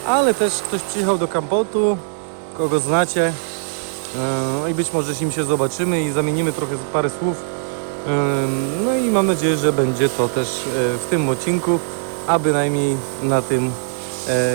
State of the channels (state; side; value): quieter; left; 37.7 dB